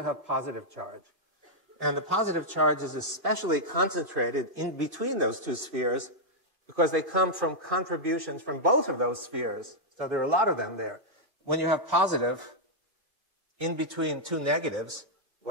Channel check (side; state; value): left; late; 2.5 ms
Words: have positive charge. And the positive charge is especially concentrated in between those two spheres because they come from contributions from both of those spheres. So there are a lot of them there. When you have positive in between two negatives,